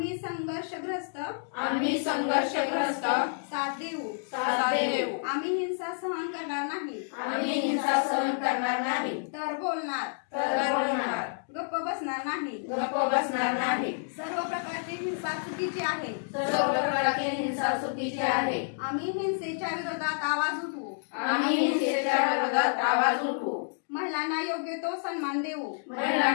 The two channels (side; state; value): right; silent; digital silence